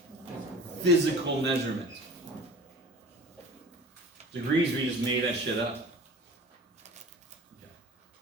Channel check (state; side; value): normal; both; correlation 0.40